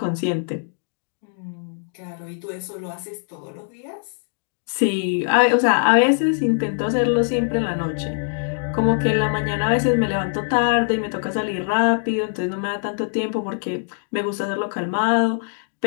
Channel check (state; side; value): silent; right; digital silence